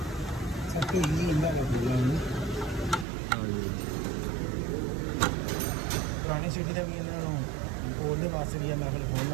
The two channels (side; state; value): left; drops out; at 3.1 s